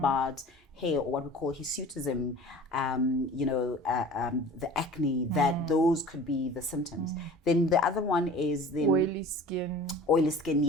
hair, or what we call hirsutism, the acne, that those could be the symptoms. Then the other one is then oily skin,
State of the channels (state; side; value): normal; both; correlation 0.42